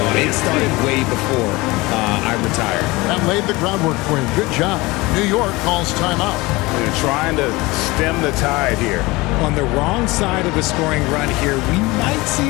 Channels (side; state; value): right; quieter; 22.2 dB